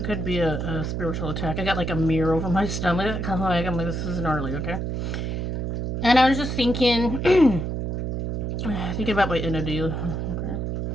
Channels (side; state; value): right; noise; hum, 2 dB below the sound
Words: could be a spiritual attack. I got like a mirror over my stomach. I'm like, this is gnarly, okay? And I was just thinking, thinking about my entity. Okay.